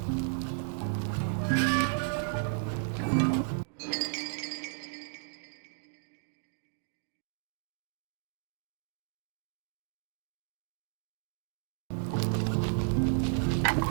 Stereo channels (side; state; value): left; silent; digital silence